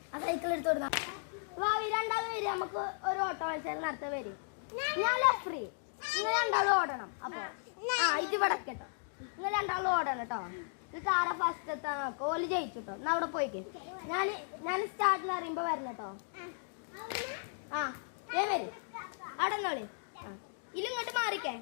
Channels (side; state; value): right; silent; digital silence